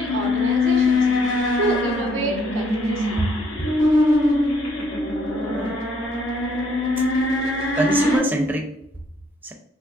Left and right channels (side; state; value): both; normal; correlation 0.67